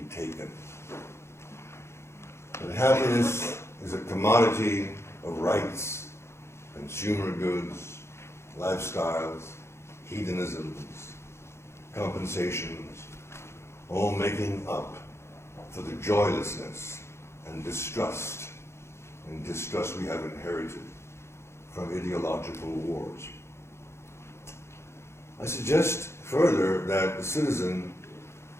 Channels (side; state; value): right; late; 0.13 ms